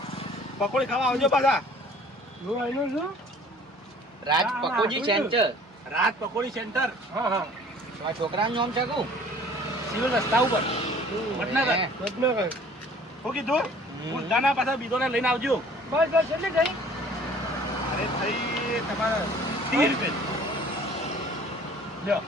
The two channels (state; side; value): normal; both; correlation 0.51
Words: પકોડી ખાવા આવજો પાછા. હું આનું છું રાજ ના, પકોડી ના, સેન્ટર રાત પકોડી સેન્ટર હા હા આ છોકરાનું નામ છે કું સિવિલ રસ્તા ઉપર વડનગર. હે. વડનગર શું કીધું ઉલટાના પાછા બીજોને લઈને આવજો. બસ બસ એટલે ગઈ અરે થઈ તમારા 30 રૂપિયા લ્યો.